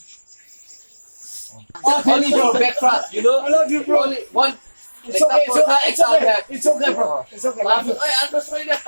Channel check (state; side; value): inverted; both; correlation -1.00